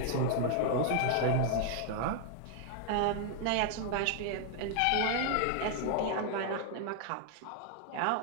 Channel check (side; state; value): both; different; correlation 0.00